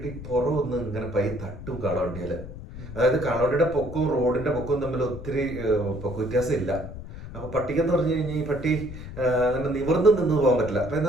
പുറമൊന്ന് ഇങ്ങനെ തട്ടും കാളവണ്ടിയിൽ. അതായത് കാളവണ്ടിയുടെ പൊക്കവും റോഡിന്റെ പൊക്കവും തമ്മിൽ ഒത്തിരി പൊക്ക വ്യത്യാസം ഇല്ല. അപ്പൊ പട്ടിക്കെന്ന് പറഞ്ഞു കഴിഞ്ഞാൽ ഈ പട്ടി അങ്ങനെ നിവർന്ന് നിന്ന് പോകാൻ പറ്റില്ല. അപ്പൊ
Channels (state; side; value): noise; left; rumble, 11 dB below the sound